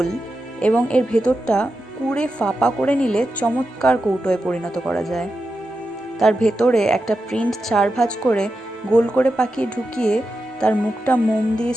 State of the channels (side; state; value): both; normal; correlation 0.89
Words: এবং এর ভেতরটা কুড়ে ফাঁপা করে নিলে চমৎকার কৌটোয় পরিণত করা যায়। তার ভেতরে একটা প্রিন্ট 4 ভাঁজ করে গোল করে পাকিয়ে ঢুকিয়ে তার মুখটা মোম দিয়ে